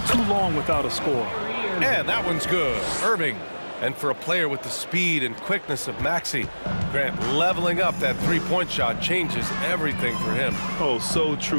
too long without a score. And that one's good. Irving. And for a player with the speed and quickness of Maxey, Grant, leveling up that three-point shot changes everything for him. Oh, so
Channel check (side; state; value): both; inverted; correlation -1.00